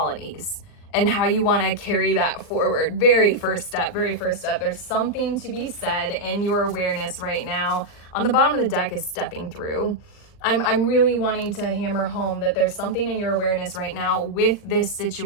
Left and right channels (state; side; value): late; right; 40 ms